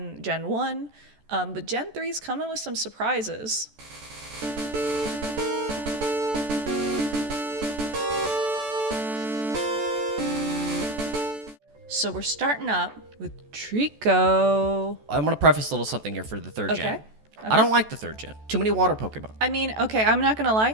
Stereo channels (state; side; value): late; left; 14 ms